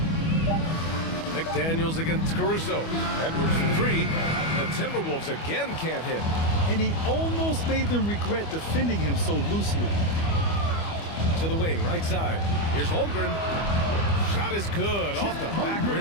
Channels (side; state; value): right; late; 25 ms